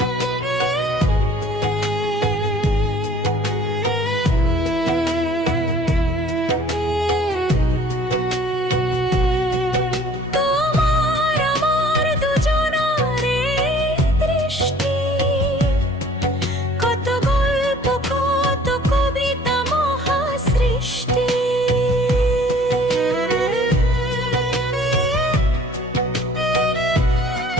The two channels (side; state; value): both; normal; correlation 0.52